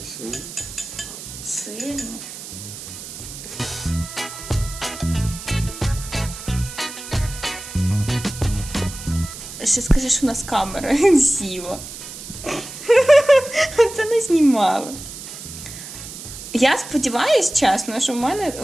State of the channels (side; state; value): right; noise; hiss, 12 dB below the sound